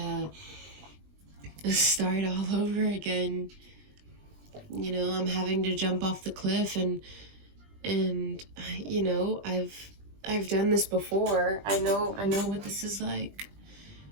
start all over again. You know, I'm having to jump off the cliff, and you know, I've done this before. I know what this is like.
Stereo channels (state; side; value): late; left; 20 ms